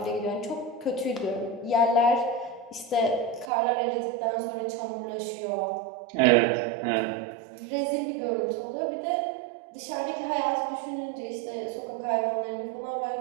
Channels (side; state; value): left; drops out; at 3.5 s